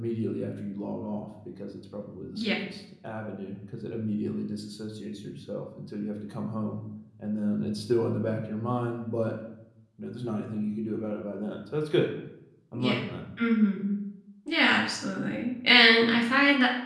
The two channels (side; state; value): both; identical; correlation 1.00